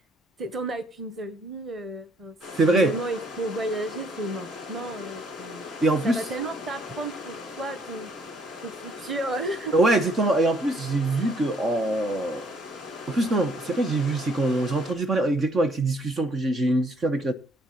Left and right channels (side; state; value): both; normal; correlation 0.65